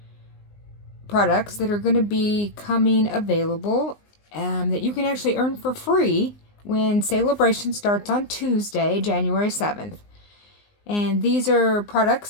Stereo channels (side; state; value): right; late; 19 ms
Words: products that are going to be coming available that you can actually earn for free when Sale-A-Bration starts on Tuesday, January 7th. And these are products